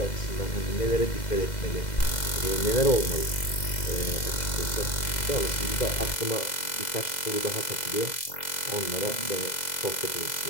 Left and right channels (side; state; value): right; late; 2.0 ms